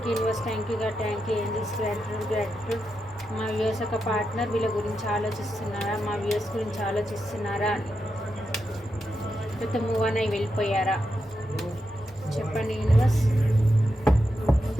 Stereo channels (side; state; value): both; normal; correlation 0.86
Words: you universe, thank you God, thank you angels, gratitude. మా వ్యూస్ యొక్క పార్ట్నర్ వీళ్ళ గురించి ఆలోచిస్తున్నారా, మా వ్యూస్ గురించి ఆలోచిస్తున్నారా, లేకపోతే మూవ్ అని వెళ్ళిపోయారా చెప్పండి యూనివర్స్.